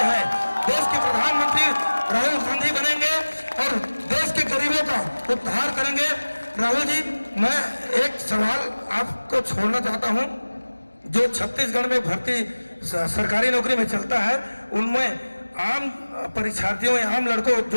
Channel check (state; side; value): inverted; both; correlation -1.00